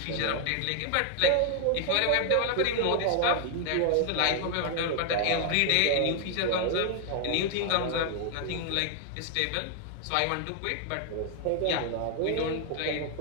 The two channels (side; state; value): both; different; correlation 0.00